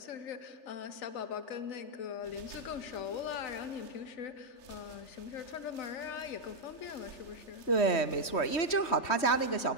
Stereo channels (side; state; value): right; late; 3.1 ms